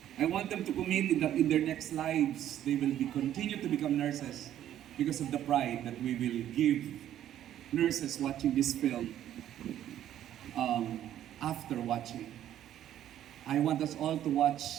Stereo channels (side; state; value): left; quieter; 11.5 dB